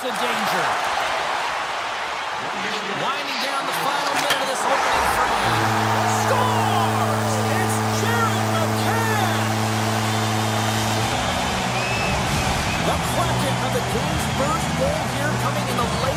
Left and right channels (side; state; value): both; identical; correlation 1.00